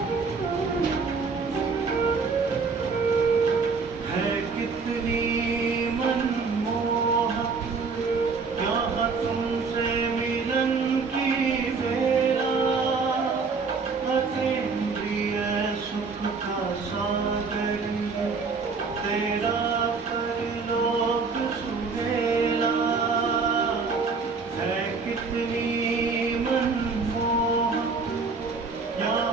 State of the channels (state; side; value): quieter; left; 4.7 dB